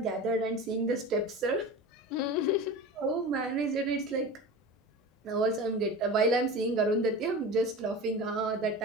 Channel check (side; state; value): both; normal; correlation 0.32